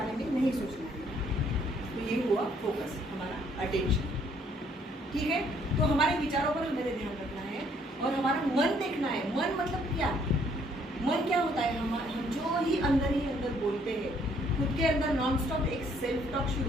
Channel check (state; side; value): normal; both; correlation 0.65